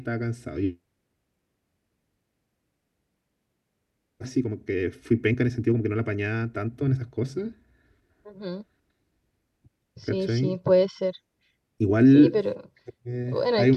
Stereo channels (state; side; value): identical; both; correlation 1.00